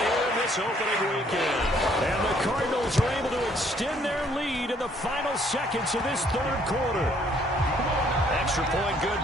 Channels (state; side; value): normal; both; correlation 0.64